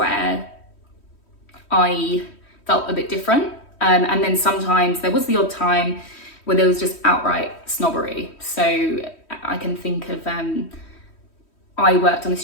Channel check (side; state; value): right; late; 3.1 ms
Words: I felt a bit different. And then sometimes there was the odd time where there was just outright snobbery. So I can think of, I worked on a